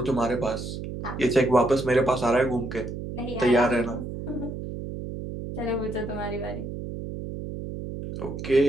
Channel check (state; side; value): noise; right; hum, 7 dB below the sound